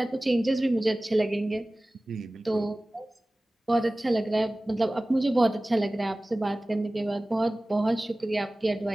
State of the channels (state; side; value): normal; both; correlation 0.98